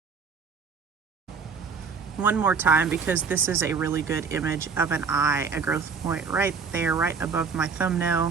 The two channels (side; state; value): left; quieter; 5.6 dB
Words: One more time, because this is a really good image of an eye, a growth point right there, right above my